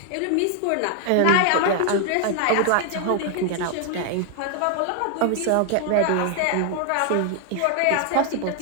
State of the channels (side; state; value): both; different; correlation 0.00